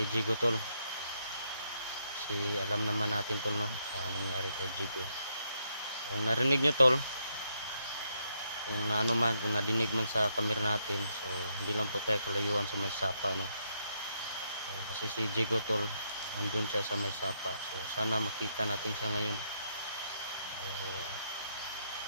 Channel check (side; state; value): both; inverted; correlation -0.76